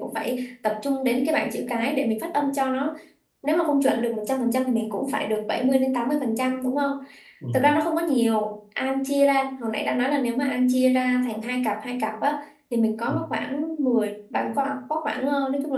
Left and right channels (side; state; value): both; identical; correlation 1.00